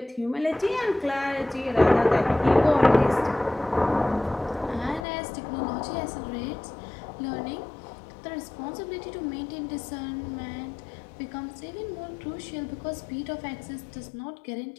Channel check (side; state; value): right; drops out; at 5.1 s